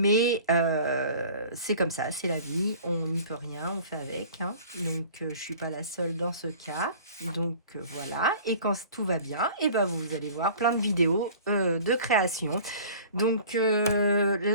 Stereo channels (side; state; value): both; inverted; correlation -0.45